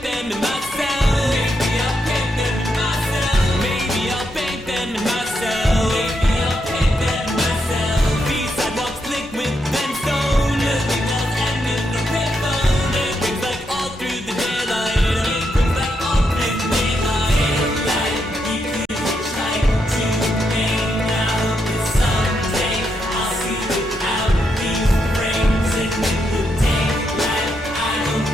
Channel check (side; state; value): both; normal; correlation 0.81